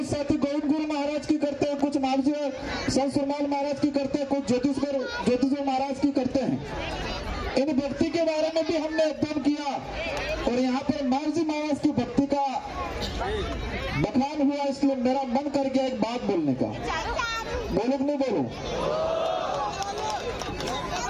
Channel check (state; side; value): identical; both; correlation 1.00